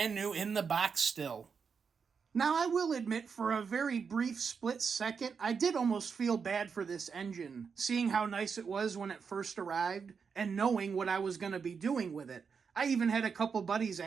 new in the box still. Now, I will admit, for a very brief split second, I did almost feel bad for this engine, seeing how nice it was when it first arrived, and knowing what I was going to be doing with it. I even had a couple buddies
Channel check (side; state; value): left; quieter; 5.9 dB